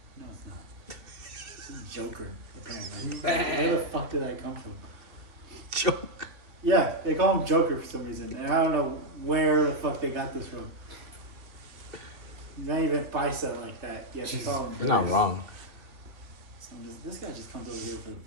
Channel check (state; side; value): late; left; 2.7 ms